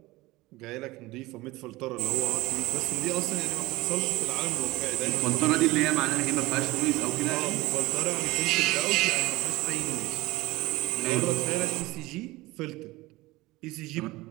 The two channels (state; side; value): quieter; left; 20.0 dB